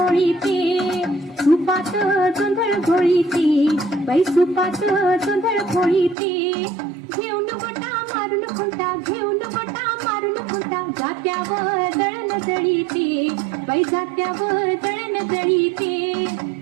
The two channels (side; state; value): left; drops out; at 6.2 s